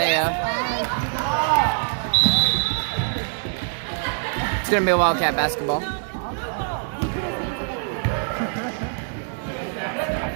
It's going to be a Wildcat basketball.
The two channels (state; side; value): silent; left; digital silence